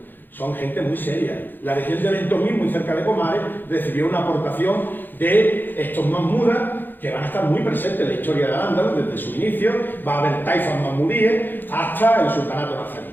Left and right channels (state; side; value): late; right; 0.091 ms